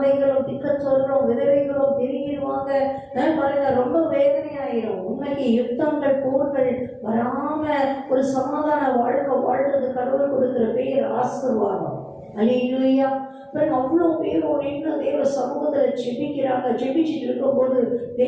திக்கச்சொல்லும் விதவைகளும் பெருகிடுவாங்க. பாருங்க, ரொம்ப வேதனையாயிரும். உண்மைக்கு யுத்தங்கள் போர்கள் வராம ஒரு சமாதான வாழ்க்கை வாழ்றது கடவுள் கொடுக்கிற பேர் ஆசீர்வாதம். அல்லேலூயா. அவ்வளோ பேரும் நின்று தேவ சமூகத்துல ஜெபிக்கிறாங்க. ஜெபிச்சுட்டு இருக்கும்போது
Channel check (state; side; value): identical; both; correlation 1.00